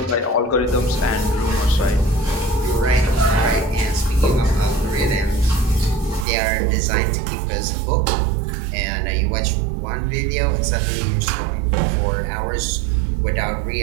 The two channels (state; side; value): drops out; left; at 6.2 s